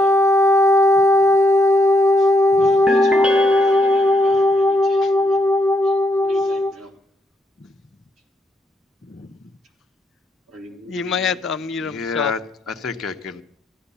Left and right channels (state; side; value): normal; both; correlation 0.75